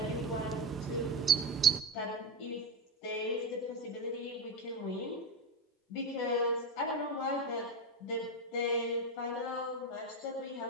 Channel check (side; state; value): both; normal; correlation 0.15